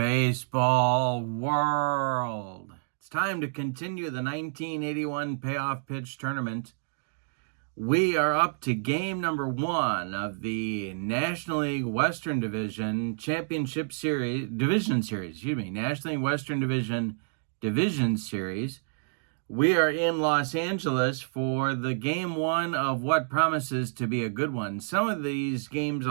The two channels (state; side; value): silent; left; digital silence